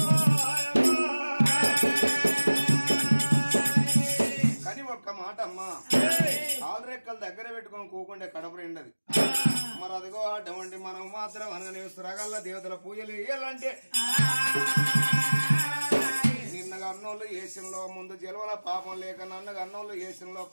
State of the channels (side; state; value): both; inverted; correlation -1.00